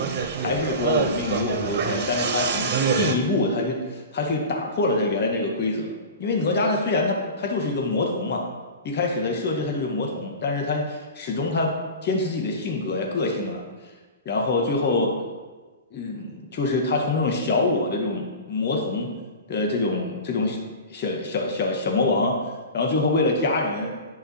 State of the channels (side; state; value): both; inverted; correlation -0.31